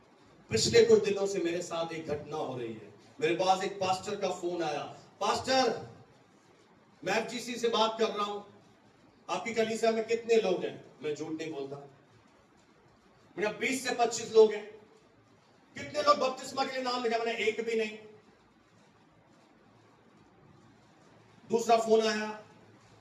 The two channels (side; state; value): both; identical; correlation 1.00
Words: पिछले कुछ दिनों से मेरे साथ एक घटना हो रही है। मेरे पास एक पास्टर का फोन आया, पास्टर मैं एफजीसी से बात कर रहा हूं, आपकी कलीसिया में कितने लोग हैं? मैं झूठ नहीं बोलता, मेरा 20 से 25 लोग हैं। कितने लोग बपतिस्मा के लिए नाम लिखा? मैंने एक भी नहीं। दूसरा फोन आया,